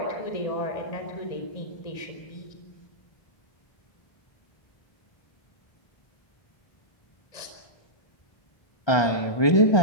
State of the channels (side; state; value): right; late; 1.3 ms